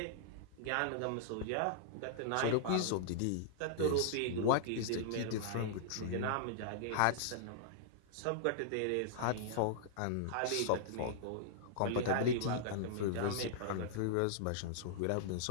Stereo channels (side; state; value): both; different; correlation -0.01